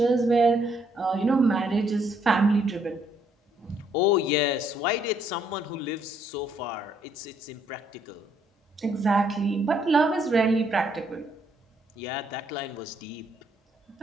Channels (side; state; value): both; normal; correlation 0.70